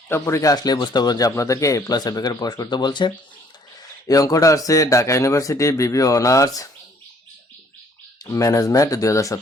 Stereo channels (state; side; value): normal; both; correlation 0.61